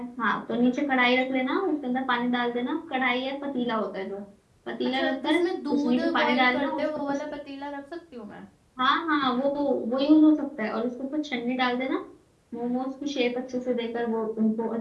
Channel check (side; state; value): both; identical; correlation 1.00